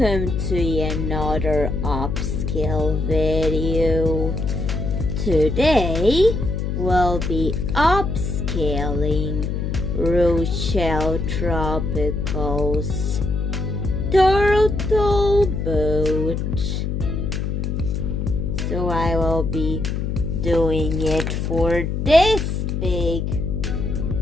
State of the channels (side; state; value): left; noise; hum, 1 dB below the sound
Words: to another upscale video. Today we'll be upscaling Rochelle Tropical's turtle boat. So I will be doing it for this big